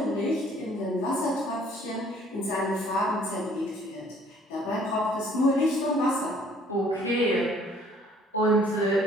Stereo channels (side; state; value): both; normal; correlation 0.58